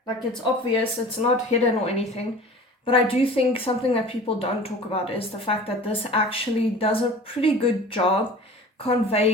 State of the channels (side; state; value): both; normal; correlation 0.41